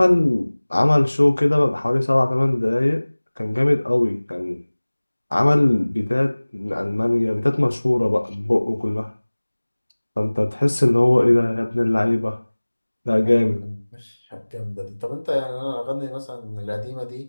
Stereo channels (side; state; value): both; inverted; correlation -1.00